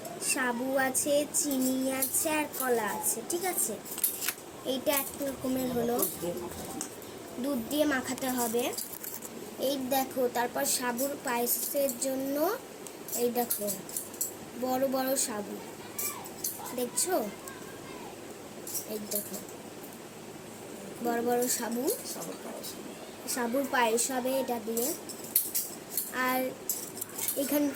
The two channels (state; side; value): identical; both; correlation 1.00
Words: সাবু আছে, চিনি আছে, আর কলা আছে, ঠিক আছে। এইটা এক রকমের হলো, দুধ দিয়ে মাখাতে হবে। এই দেখো, তারপর সাবুর পায়েসের জন্য এই দেখো বড় বড় সাবু, দেখছো? এই দেখো বড় বড় সাবু, সাবুর পায়েস হবে এটা দিয়ে। আর